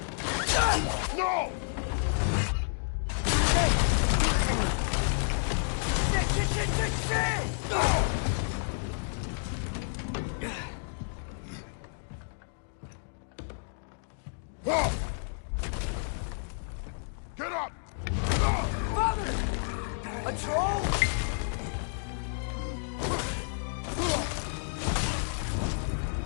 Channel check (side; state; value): right; silent; digital silence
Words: No! Shit! Get up! Father! A troll?